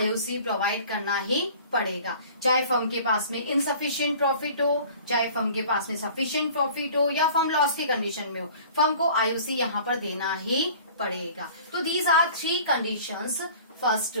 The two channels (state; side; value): inverted; both; correlation -0.47